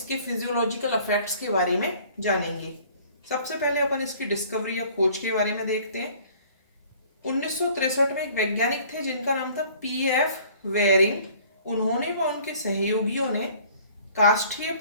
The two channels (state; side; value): inverted; both; correlation -0.53